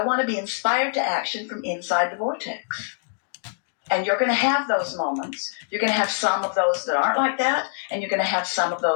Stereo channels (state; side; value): silent; right; digital silence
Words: want to be inspired to action from inside the vortex. And you're going to have those moments. You're going to have some of those that aren't like that, and you're going to have some of